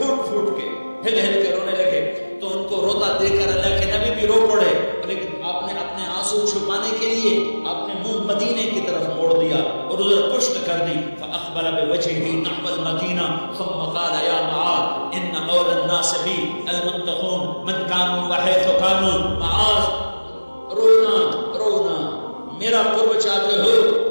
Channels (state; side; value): inverted; both; correlation -1.00